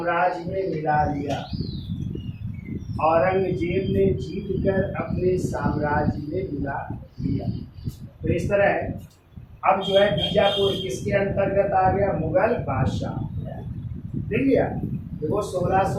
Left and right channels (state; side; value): identical; both; correlation 1.00